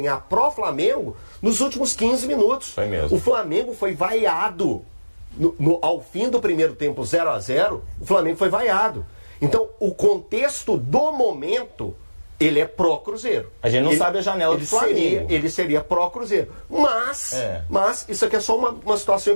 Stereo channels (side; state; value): both; inverted; correlation -1.00